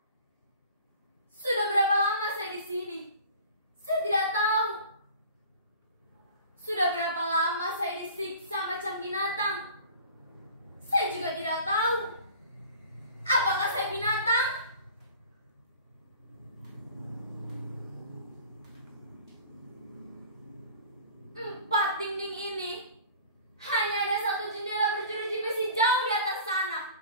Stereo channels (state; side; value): inverted; both; correlation -0.44